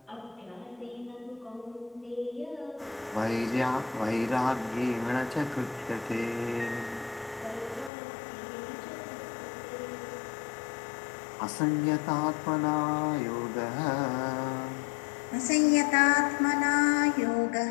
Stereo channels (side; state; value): right; drops out; at 7.9 s